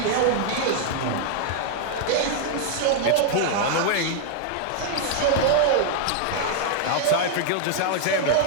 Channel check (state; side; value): different; both; correlation 0.00